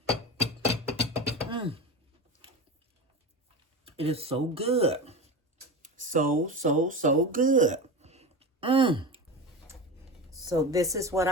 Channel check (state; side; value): normal; both; correlation 0.24